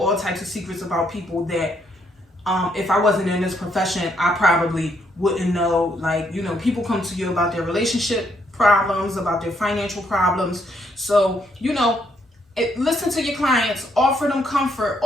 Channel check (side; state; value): both; normal; correlation 0.73